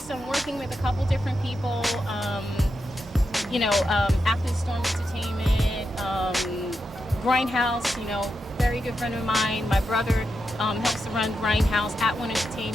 I'm working with a couple different people. After the Storm Entertainment, Grindhouse, very good friend of mine. My brother helps to run Grindhouse, At One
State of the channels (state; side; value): normal; both; correlation 0.87